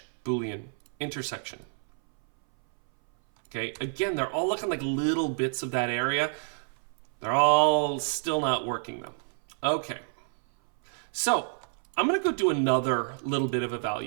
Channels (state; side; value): silent; left; 59 dB below the other